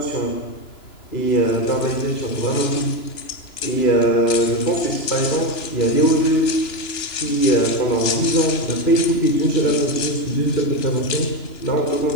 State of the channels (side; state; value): right; late; 2.9 ms